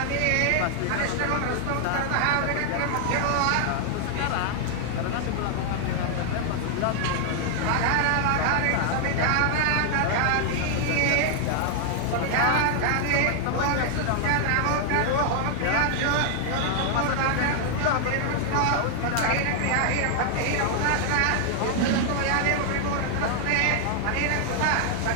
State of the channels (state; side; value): different; both; correlation 0.00